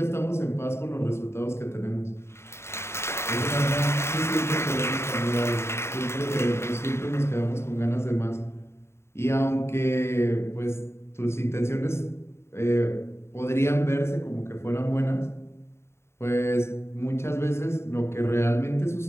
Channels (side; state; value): right; late; 0.13 ms